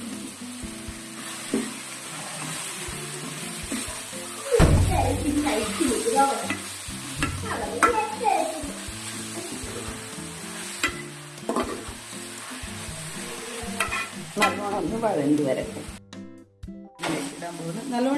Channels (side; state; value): both; identical; correlation 1.00